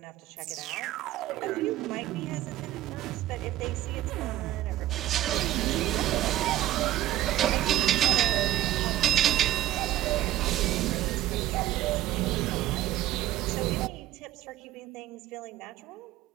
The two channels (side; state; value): left; quieter; 13.6 dB